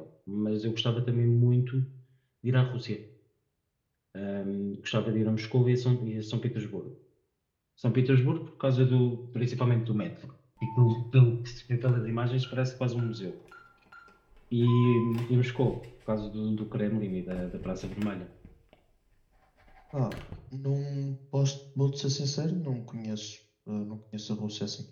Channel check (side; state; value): both; identical; correlation 1.00